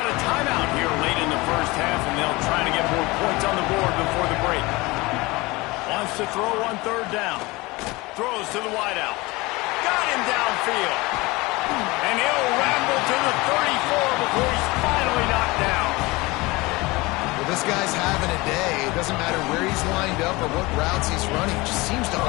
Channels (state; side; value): quieter; right; 22.7 dB